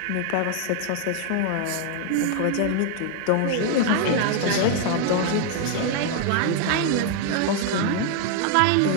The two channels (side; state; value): both; different; correlation 0.00